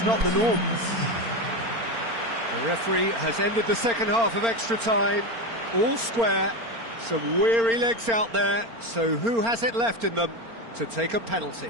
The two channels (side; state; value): left; late; 4.4 ms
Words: not the norm. The referee has ended the second half of extra time. All square. Some weary legs out there. So who has it left in them to take a penalty?